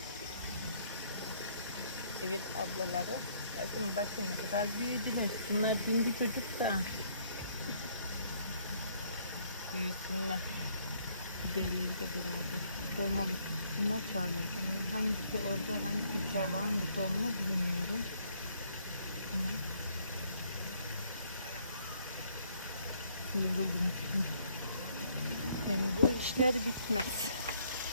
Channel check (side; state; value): both; inverted; correlation -0.66